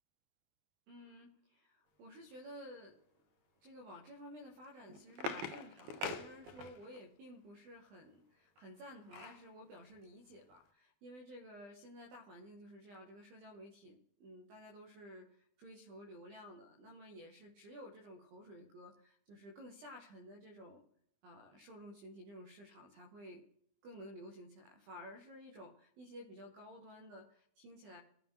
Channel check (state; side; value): late; left; 20 ms